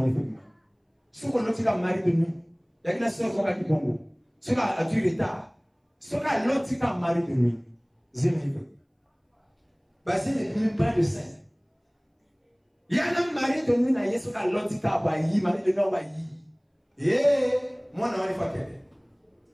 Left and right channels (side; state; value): both; identical; correlation 1.00